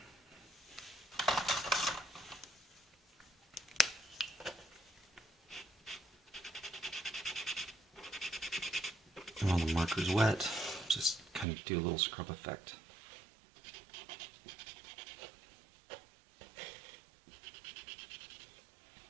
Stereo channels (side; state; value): left; drops out; at 11.5 s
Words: While the marker's wet, just kind of do a little scrub effect.